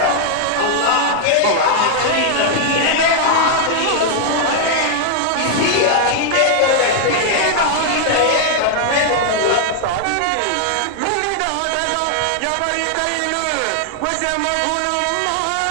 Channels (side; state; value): both; different; correlation 0.00